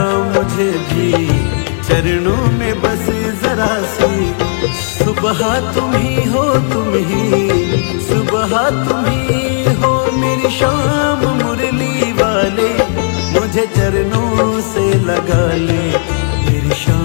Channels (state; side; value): silent; right; digital silence